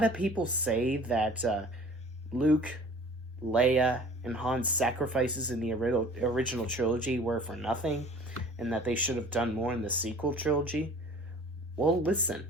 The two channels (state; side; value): normal; both; correlation 0.47